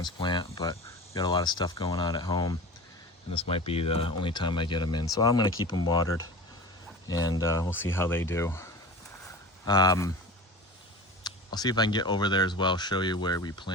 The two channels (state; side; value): normal; both; correlation 0.33